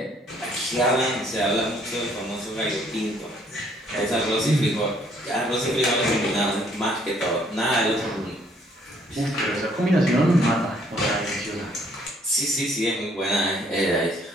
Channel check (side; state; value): both; normal; correlation 0.64